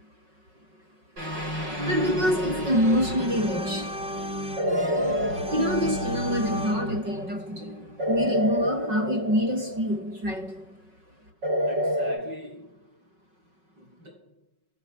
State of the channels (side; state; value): left; late; 5.4 ms